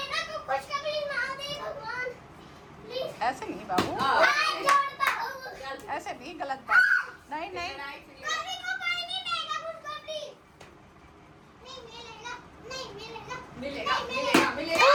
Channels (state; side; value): identical; both; correlation 1.00